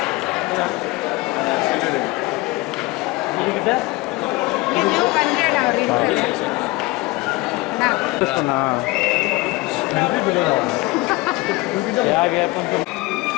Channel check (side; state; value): right; quieter; 21.7 dB